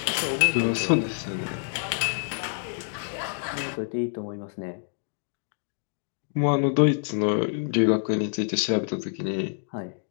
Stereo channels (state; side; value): silent; right; digital silence